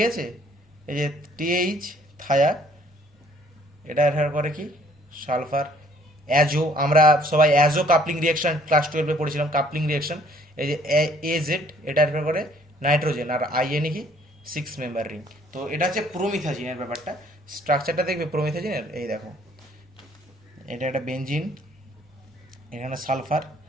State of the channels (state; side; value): normal; both; correlation 0.60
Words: আছে, এই যে TH থায়া, এটা রেফার করে কি, সালফার। অ্যাজো, আমরা সবাই অ্যাজো কাপলিং রিয়াকশন ক্লাস 12-এ পড়েছিলাম, কাপলিং রিয়াকশন। এই যে AZ, এটা রেফার করে নাইট্রোজেন। আর IN কি, 6 মেম্বার রিং। তো এটা হচ্ছে প্রোমিথাজিনের ব্যাপারটা। স্ট্রাকচারটা দেখবে প্রোমিথাজিনের, এই দেখো, এটা একটা বেঞ্জিন, এখানে সালফার,